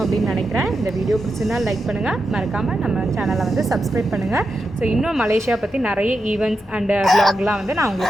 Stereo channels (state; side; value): normal; both; correlation 0.88